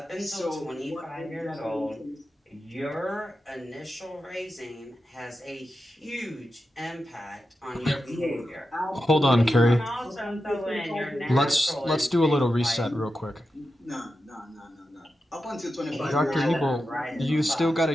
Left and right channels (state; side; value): normal; both; correlation 0.90